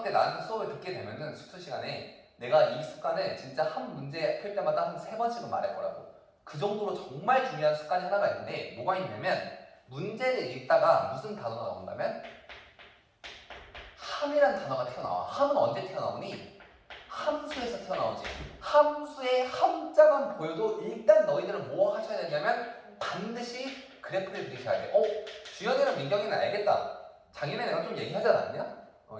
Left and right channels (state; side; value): identical; both; correlation 1.00